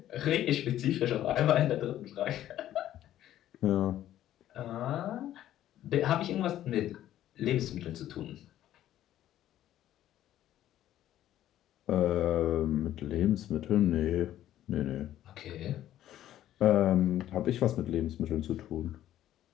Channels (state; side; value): quieter; right; 12.5 dB